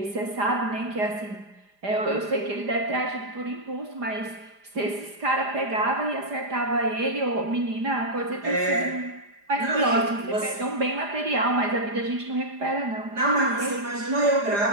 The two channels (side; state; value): left; late; 4.9 ms